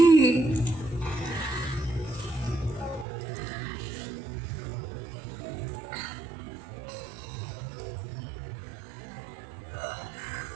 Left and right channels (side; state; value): left; drops out; at 3.1 s